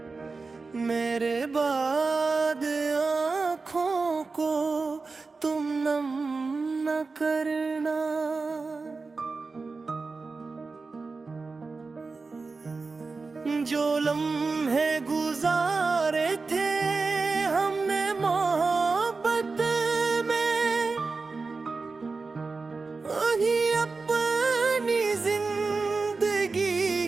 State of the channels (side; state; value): left; quieter; 4.1 dB